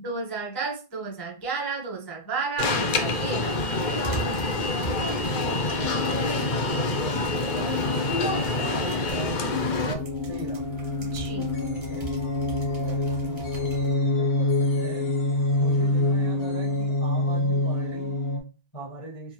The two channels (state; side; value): late; right; 2.1 ms